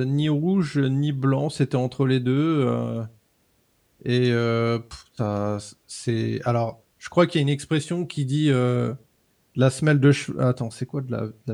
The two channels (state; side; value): identical; both; correlation 1.00